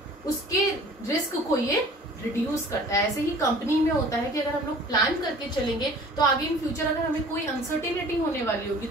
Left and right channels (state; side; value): normal; both; correlation 0.47